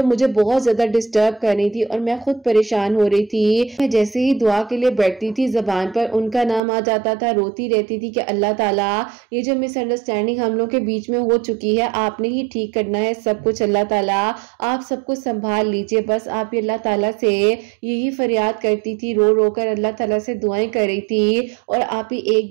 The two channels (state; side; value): drops out; left; at 6.6 s